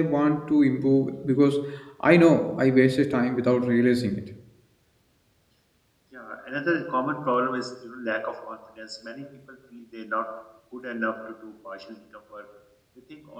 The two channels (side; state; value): both; identical; correlation 1.00